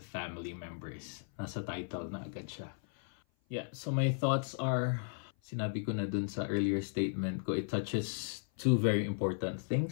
family members. Nasa title na agad siya. Yeah, so my thoughts are, sinabi ko na dun sa earlier statement ko, it touches two very important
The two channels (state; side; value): silent; right; 54 dB below the other